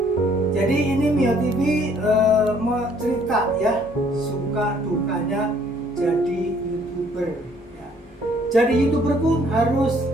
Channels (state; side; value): normal; both; correlation 0.62